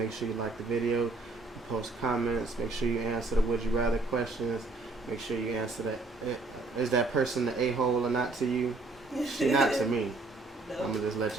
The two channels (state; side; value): quieter; left; 3.4 dB